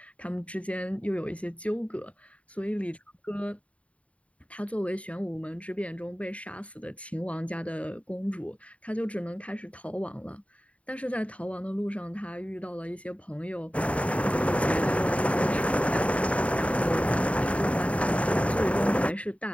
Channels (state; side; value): late; right; 0.065 ms